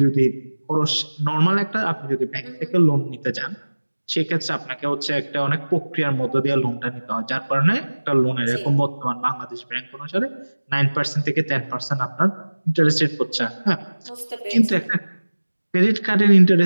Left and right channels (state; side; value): inverted; both; correlation -1.00